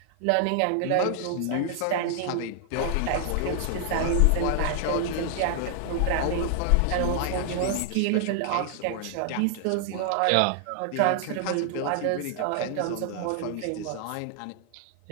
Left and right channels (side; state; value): both; different; correlation 0.00